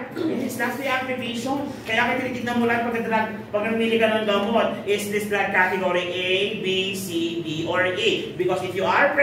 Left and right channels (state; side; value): identical; both; correlation 1.00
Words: It's not the activation. Kaya kaya tinitignan mo lang pag namili ka ng gamot, is this drug category A, B, C, D, or A? Because if you are